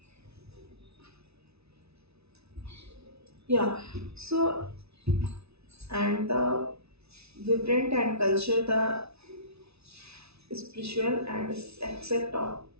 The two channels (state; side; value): late; left; 0.79 ms